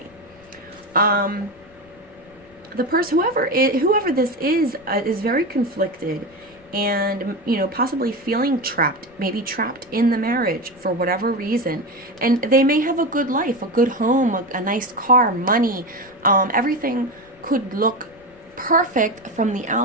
The person, whoever this is very conflicted, and possibly feeling trapped, maybe trapped in the marriage for whatever reason. And they may have a good life, a good home, a nice car, money, everything could look perfect from the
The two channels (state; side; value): noise; left; rumble, 28 dB below the sound